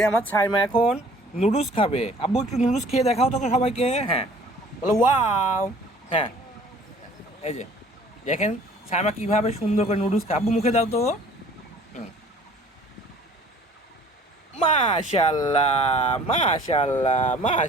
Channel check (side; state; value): both; normal; correlation 0.52